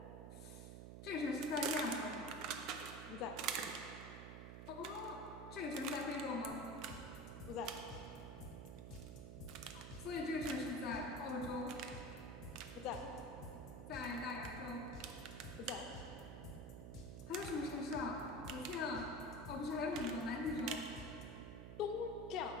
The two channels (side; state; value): right; noise; hum, 8 dB below the sound